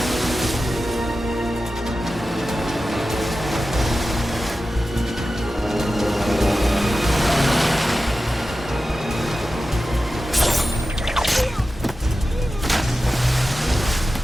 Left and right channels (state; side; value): normal; both; correlation 0.93